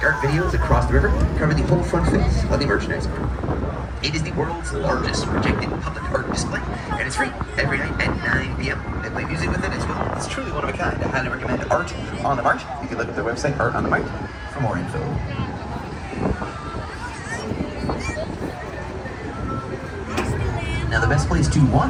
art videos across the river, cover the whole front face of the merchandise mart. It is the world's largest projected public art display, and it's free every night at 9 p.m. They play music with it as well. It's truly one of a kind. I highly recommend Art on the Mart. You can look at their website, Art on the Mart, for more info. Now the best place to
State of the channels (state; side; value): identical; both; correlation 1.00